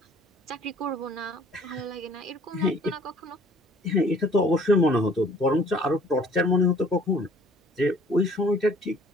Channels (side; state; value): both; normal; correlation 0.55